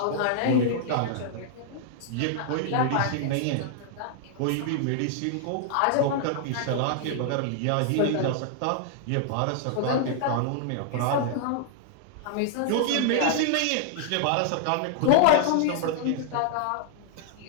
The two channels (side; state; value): both; different; correlation -0.01